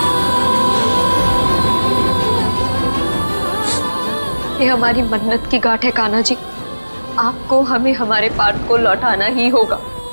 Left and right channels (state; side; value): inverted; both; correlation -1.00